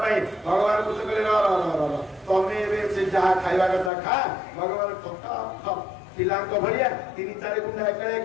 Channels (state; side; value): drops out; right; at 3.9 s